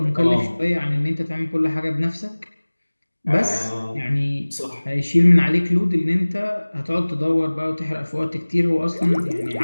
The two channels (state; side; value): inverted; both; correlation -1.00